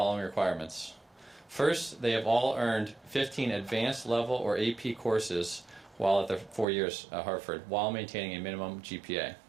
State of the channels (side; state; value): left; drops out; at 6.7 s